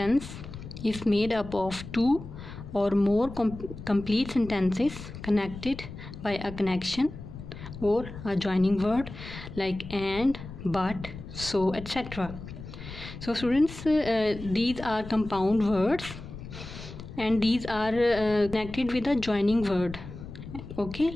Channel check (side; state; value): left; noise; rumble, 12 dB below the sound